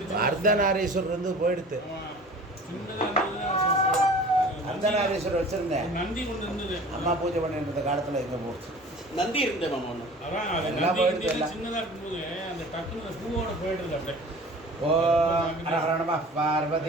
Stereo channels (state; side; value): normal; both; correlation 0.43